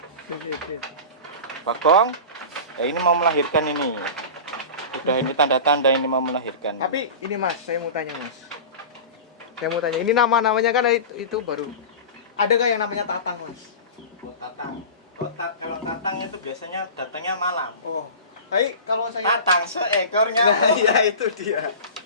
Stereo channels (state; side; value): inverted; both; correlation -0.32